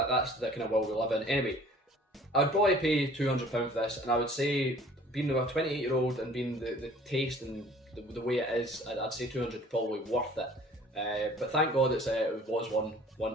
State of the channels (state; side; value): normal; both; correlation 0.51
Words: the kind of world we live in. Anyway, I'd probably pay £200 for this, and I would say, being a 28-year-old and being the taste and the way it is, I'd say 200 probably worth it. But thank God it was